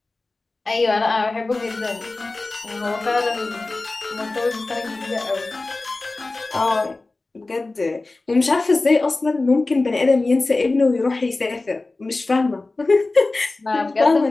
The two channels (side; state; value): right; quieter; 3.3 dB